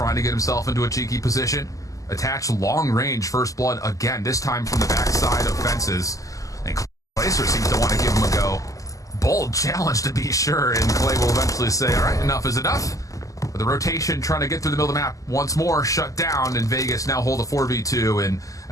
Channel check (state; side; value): late; right; 0.16 ms